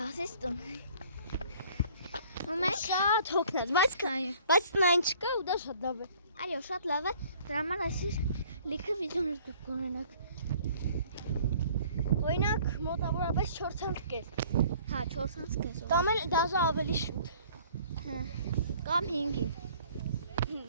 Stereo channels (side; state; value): both; inverted; correlation -0.54